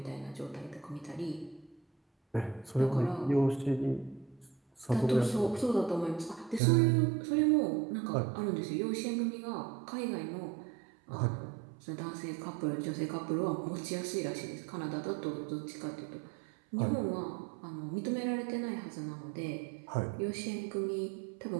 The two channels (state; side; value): drops out; left; at 6.6 s